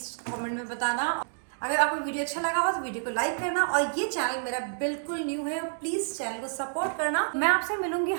कमेंट में बताना। अगर आपको वीडियो अच्छा लगा हो तो वीडियो को लाइक करना, और ये चैनल मेरा बिल्कुल न्यू है, प्लीज़ चैनल को सपोर्ट करना। मैं आपसे मिलूंगी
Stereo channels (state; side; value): silent; left; digital silence